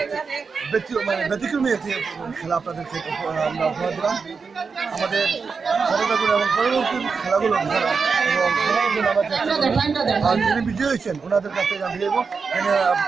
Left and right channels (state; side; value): quieter; left; 5.1 dB